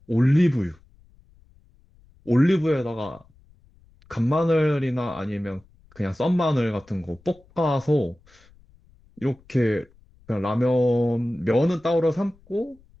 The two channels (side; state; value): left; noise; rumble, 29 dB below the sound